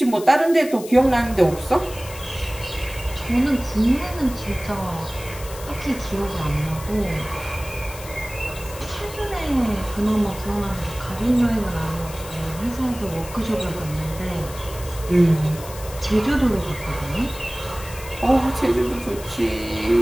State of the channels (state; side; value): noise; left; hiss, 15 dB below the sound